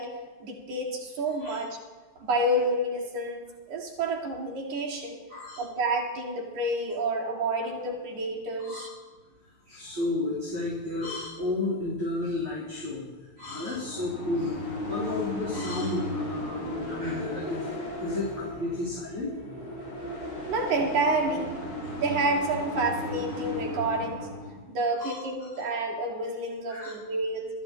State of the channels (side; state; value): left; late; 12 ms